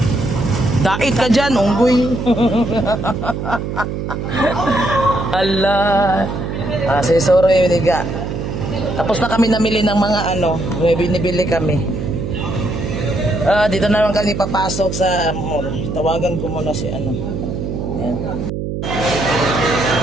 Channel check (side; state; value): right; noise; hum, 4 dB below the sound